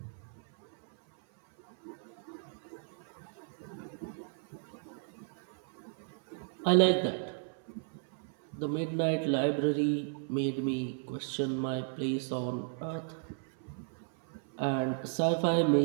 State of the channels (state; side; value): silent; left; 55 dB below the other